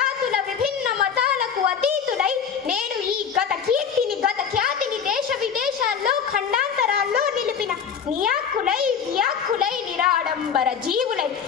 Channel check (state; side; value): quieter; right; 7.2 dB